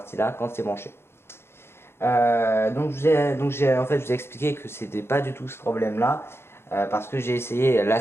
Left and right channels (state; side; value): late; right; 0.12 ms